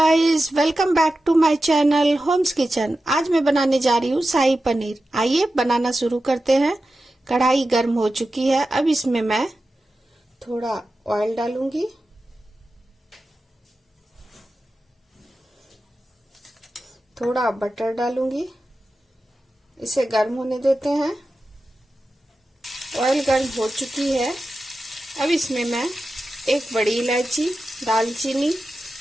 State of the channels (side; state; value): both; normal; correlation 0.93